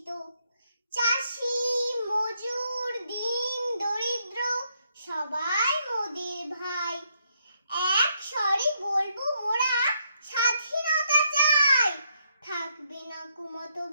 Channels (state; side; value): inverted; both; correlation -0.76